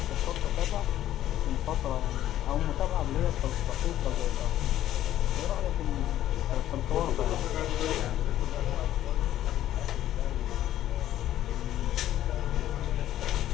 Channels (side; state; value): right; quieter; 12.7 dB